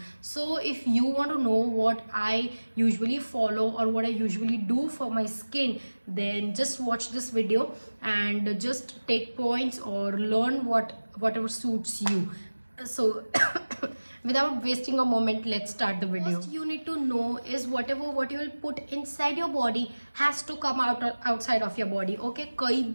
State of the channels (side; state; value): both; inverted; correlation -1.00